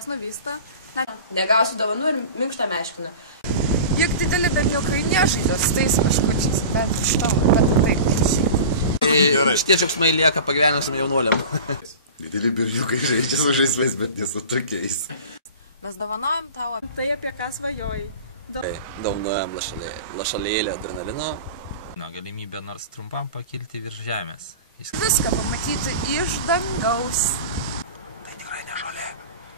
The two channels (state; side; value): inverted; both; correlation -0.35